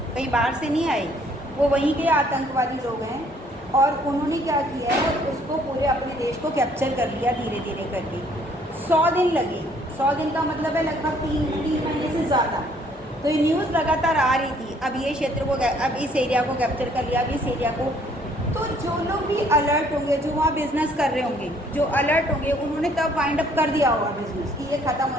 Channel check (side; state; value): both; normal; correlation 0.62